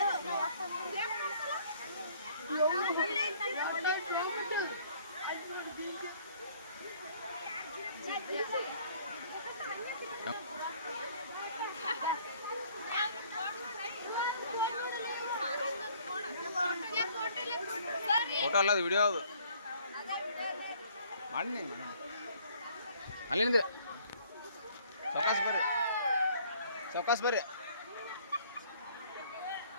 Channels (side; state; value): both; inverted; correlation -0.59